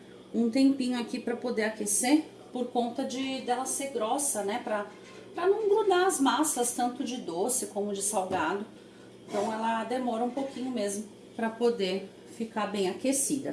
um tempinho aqui pra poder aquecer, por conta dela ser grossa, né? Pra não grudar as massas, tanto de doce como de salgado. Então ela demora um pouquinho mesmo pra poder ficar bem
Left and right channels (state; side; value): identical; both; correlation 1.00